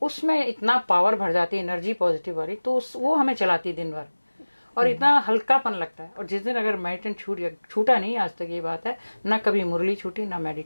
उसमें इतना पावर भर जाती है, एनर्जी पॉजिटिव वाली, तो वो हमें चलाती है दिन भर, और इतना हल्कापन लगता है। और जिस दिन अगर मेडिटेशन छूटा नहीं, आज तक ये बात है, ना कभी मुरली छूटी ना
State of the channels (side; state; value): both; inverted; correlation -1.00